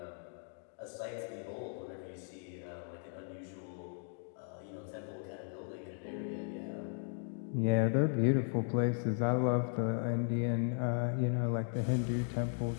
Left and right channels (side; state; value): right; silent; 53 dB below the other